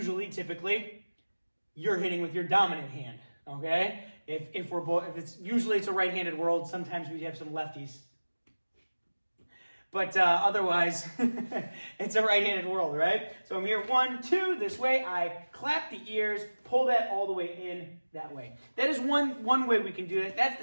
typically, you're hitting with your dominant hand, okay? If it's a right-handed world, sometimes we have some lefties. But otherwise, it's a right-handed world, right? So I'm here, 1, 2, this way. I clap the ears, pull that all the way in that way. That is one way we can do it. That's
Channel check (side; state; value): both; inverted; correlation -1.00